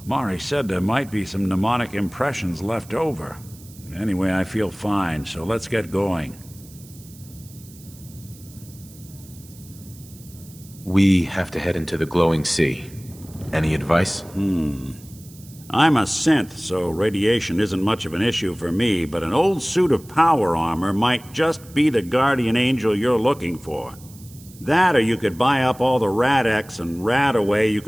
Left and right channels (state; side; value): noise; right; hiss, 22 dB below the sound